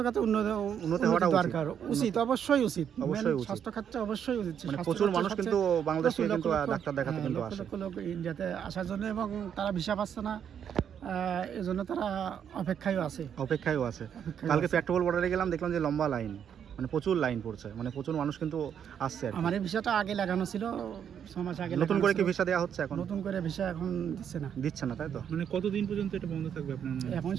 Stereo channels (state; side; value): quieter; left; 8.5 dB